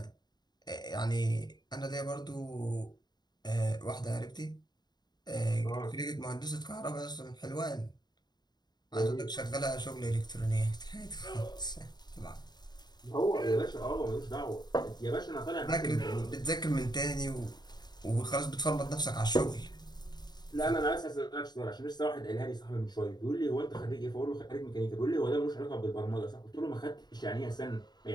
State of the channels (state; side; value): late; right; 0.20 ms